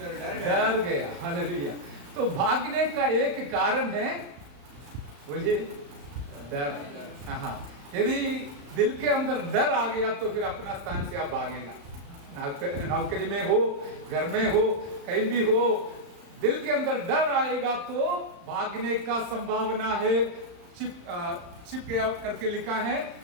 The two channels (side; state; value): left; late; 35 ms